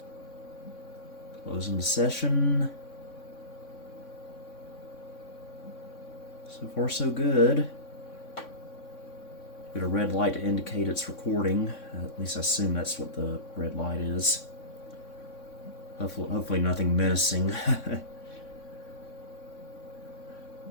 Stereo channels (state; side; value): late; right; 3.6 ms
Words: Closing the session. So far, so good. Got a red light to indicate it's recording. At least I assume that's what the red light is. Hopefully nothing menacing.